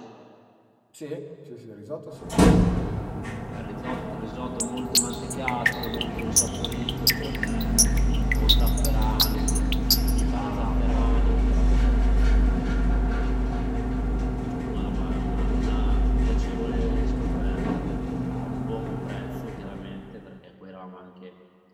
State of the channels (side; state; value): both; identical; correlation 1.00